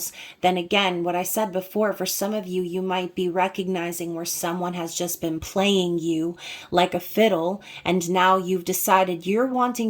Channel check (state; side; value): identical; both; correlation 1.00